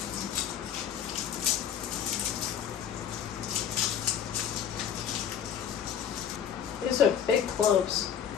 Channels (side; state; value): right; quieter; 8.7 dB